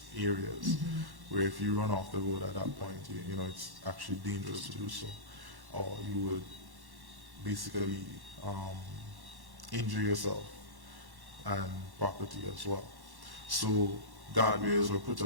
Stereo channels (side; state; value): left; late; 1.1 ms